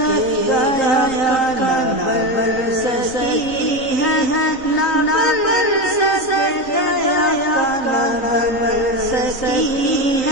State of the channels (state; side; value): late; right; 4.1 ms